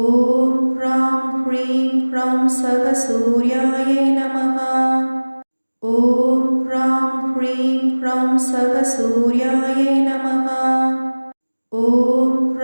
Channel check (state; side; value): inverted; both; correlation -1.00